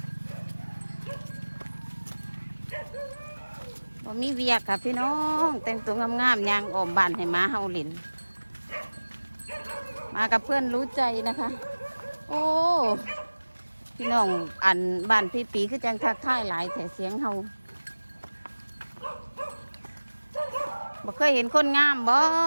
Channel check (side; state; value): both; inverted; correlation -1.00